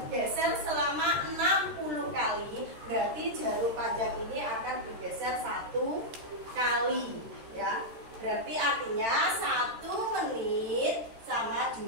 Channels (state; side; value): late; left; 13 ms